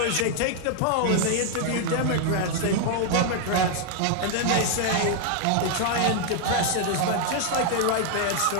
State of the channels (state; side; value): different; both; correlation 0.00